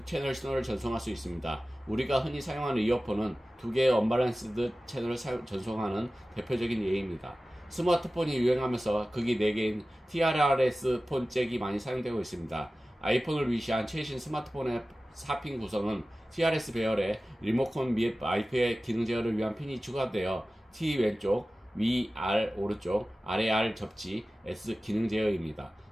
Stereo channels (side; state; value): both; normal; correlation 0.96